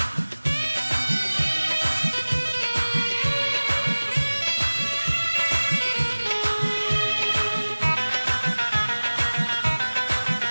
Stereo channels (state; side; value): inverted; both; correlation -1.00